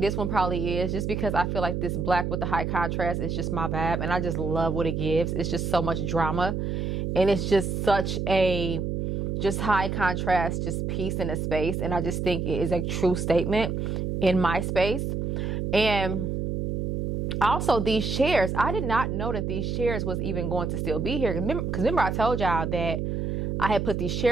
one probably is, just because I feel like this black with the high contrast is just my vibe. And I just love what it gives. It's just so much drama. And it's just such a just high contrast, just piece in a space. And I just think it is a true statement in my space. And also these chairs, I did not know that these chairs was even going to still be here. Because remember I told y'all that I had put these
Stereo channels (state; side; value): noise; right; hum, 1 dB below the sound